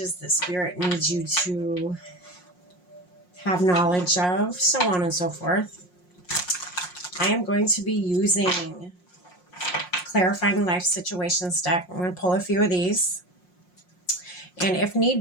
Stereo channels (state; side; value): late; right; 5.6 ms